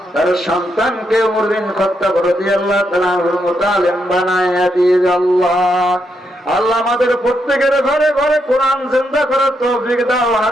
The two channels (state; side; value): normal; both; correlation 0.80